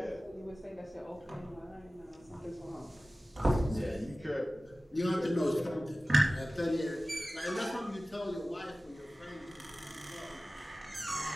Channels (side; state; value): both; normal; correlation 0.97